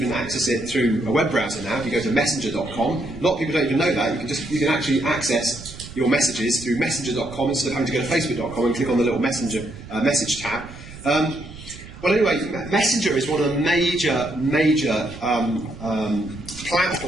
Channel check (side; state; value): right; noise; rumble, 15 dB below the sound